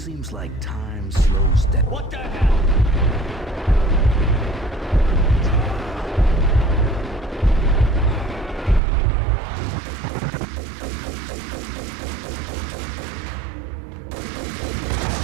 seems like time slows down. What the hell?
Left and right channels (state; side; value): drops out; left; at 8.8 s